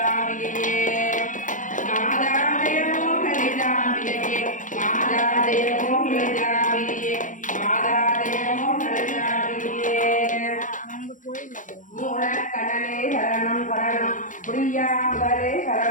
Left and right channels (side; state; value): right; late; 0.37 ms